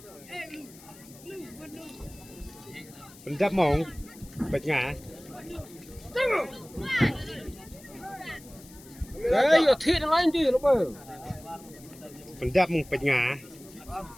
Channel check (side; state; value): left; noise; hiss, 21 dB below the sound